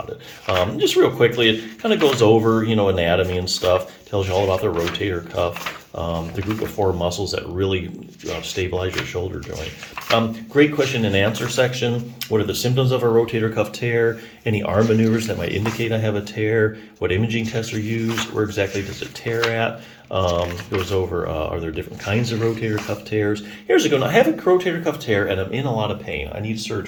it. Just real quickly, it kind of goes over, anatomy and stuff, tells you all about the rotator cuff, the group of 4 muscles that really stabilize your shoulder joint. Great question and answer section. What are the symptoms of a rotator cuff tear? Any arm maneuvers that might indicate I have a tear? What imaging tests are used? Where exactly does it tear at? Goes over, are there different kinds of rotator cuff tears? Here's a good one. I have a rotator cuff tear and I'm in a lot of pain. I need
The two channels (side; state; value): both; identical; correlation 1.00